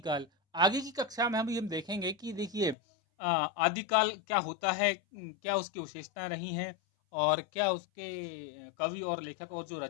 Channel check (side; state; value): right; drops out; at 2.8 s